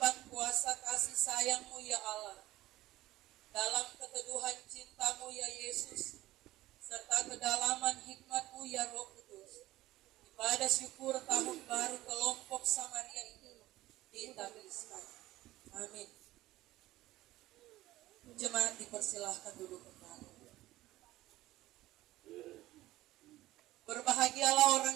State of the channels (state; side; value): quieter; left; 16.6 dB